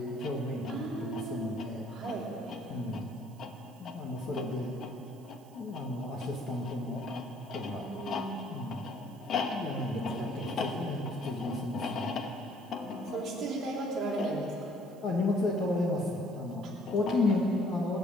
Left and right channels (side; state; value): right; noise; hiss, 27 dB below the sound